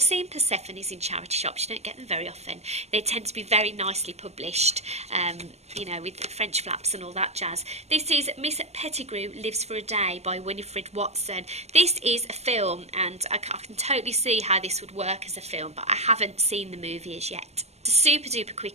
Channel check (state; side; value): late; left; 0.31 ms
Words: Persephones in charity shops. You don't get them very often. They tend to be very nicely published, you know, with French flaps and all that jazz. This is Miss Pettigrew Lives for a Day by Winifred Watson. This is a film, and I can totally see how this would work as a film, but I haven't seen the movie as yet. It's a super duper